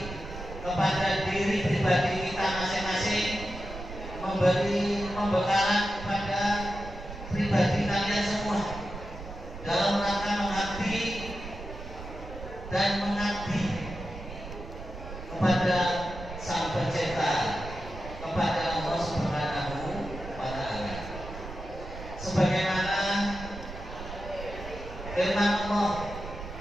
kepada diri pribadi kita masing-masing, memberi pembekalan kepada pribadi kalian semua dalam rangka mengabdi dan mengabdi kepada Sang Pencipta, kepada Allah Subhanahu wa Ta'ala. Sebagaimana firman Allah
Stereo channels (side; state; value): right; noise; rumble, 11 dB below the sound